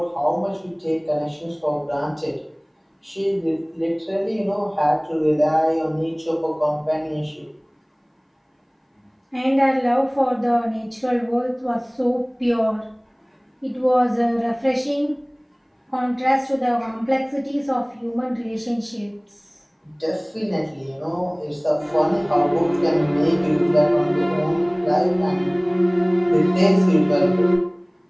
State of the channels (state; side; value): identical; both; correlation 1.00